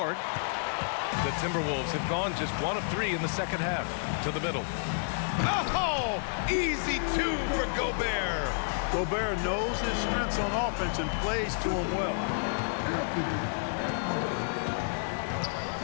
The Timberwolves have gone just 1 of 3 in the second half. To the middle. Oh! Easy 2 for Gobert. Gobert knows his strengths on offense and plays to him well.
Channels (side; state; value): right; silent; digital silence